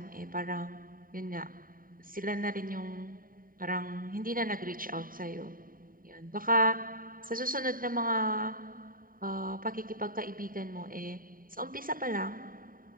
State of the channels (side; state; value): left; late; 0.41 ms